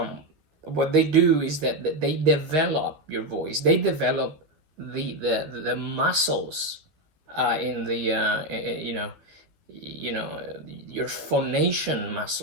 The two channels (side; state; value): left; late; 13 ms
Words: what they do is that they develop your voice. They develop the muscles in the you know your phonation